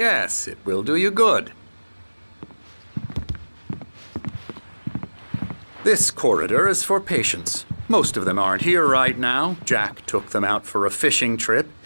it will do you good. This corridor is for patients. Most of them aren't here right now. Jack took them out for a fishing trip,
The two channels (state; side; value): inverted; both; correlation -1.00